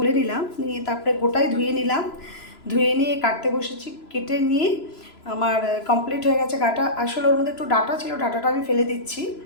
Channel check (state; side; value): late; right; 3.0 ms